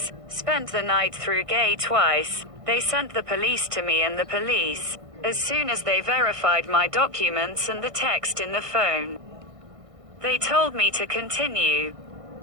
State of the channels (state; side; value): late; left; 1.6 ms